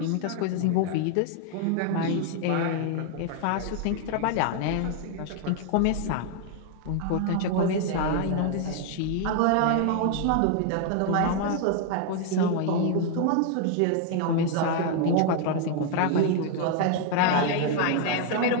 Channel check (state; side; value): different; both; correlation 0.00